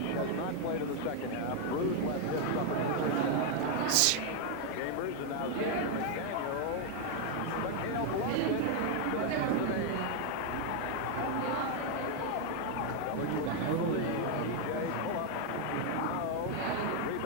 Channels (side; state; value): both; different; correlation 0.01